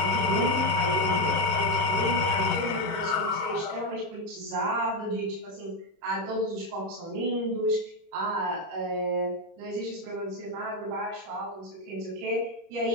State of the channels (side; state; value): left; late; 38 ms